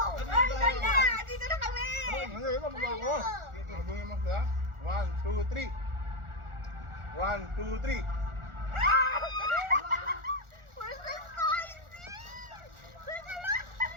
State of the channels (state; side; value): late; left; 1.4 ms